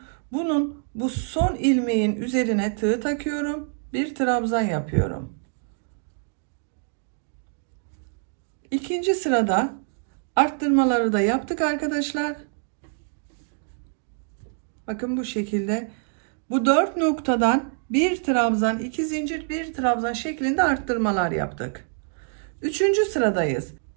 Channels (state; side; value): silent; left; 58 dB below the other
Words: Bunun bu son ilmeğin üzerine tığ takıyorum. Bir trabzan yapıyorum. İkinci sırada arttırmaları da yaptık arkadaşlar. Bakın bu şekilde bu 4 noktadan bir trabzan, 2 zincir, bir trabzan şeklinde arttırmalar yaptık. Üçüncü sıradayız.